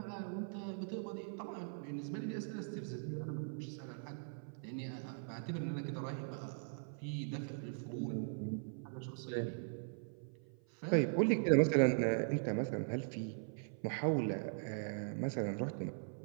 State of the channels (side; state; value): left; silent; 51 dB below the other